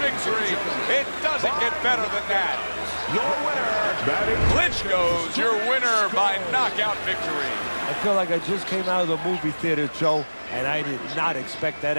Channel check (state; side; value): inverted; both; correlation -1.00